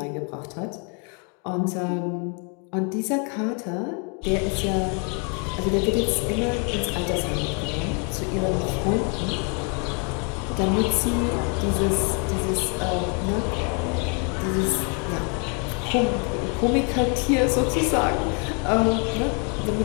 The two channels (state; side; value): quieter; right; 37.4 dB